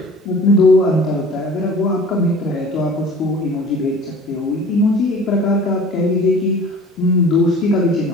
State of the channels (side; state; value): both; normal; correlation 0.44